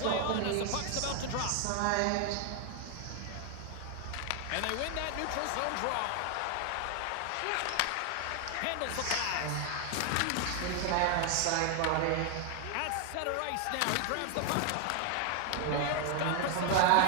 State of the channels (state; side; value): different; both; correlation 0.00